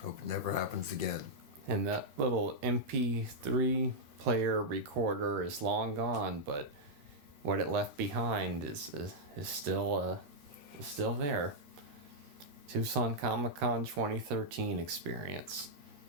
Hope it never happens again. And that little MP3 player recorder is long gone, but what it left behind is still there. Tucson Comic-Con 2013 experience.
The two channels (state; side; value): late; left; 13 ms